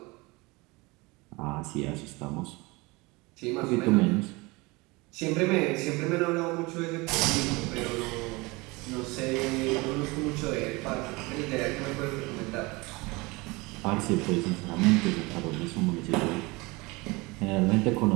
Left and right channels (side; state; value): left; quieter; 24.4 dB